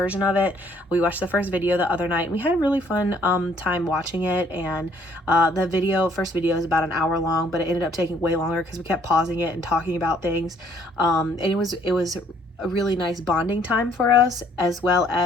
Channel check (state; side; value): normal; both; correlation 0.63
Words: of it. We watched the first video the other night. We had a really fun time watching it, and the first video is about an hour long, but it ended up taking way longer because we kept pausing it and talking about things. And it was a really nice bonding time for us, as well